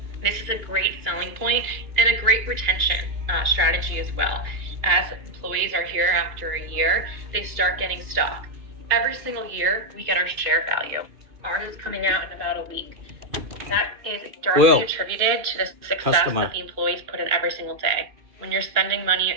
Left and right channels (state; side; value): late; left; 2.5 ms